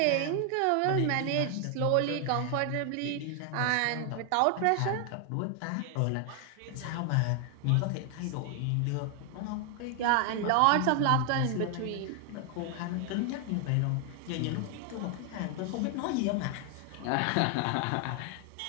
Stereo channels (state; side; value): different; both; correlation 0.00